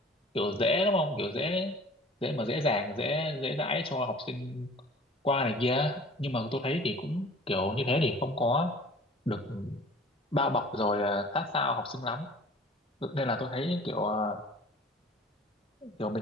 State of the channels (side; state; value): both; normal; correlation 0.46